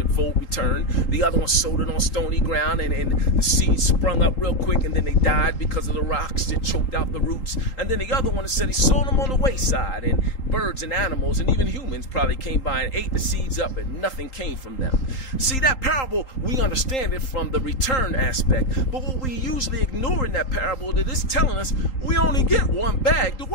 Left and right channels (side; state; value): right; late; 3.8 ms